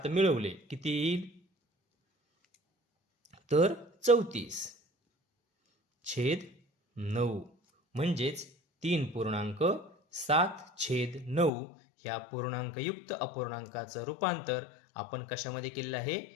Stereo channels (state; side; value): drops out; right; at 11.5 s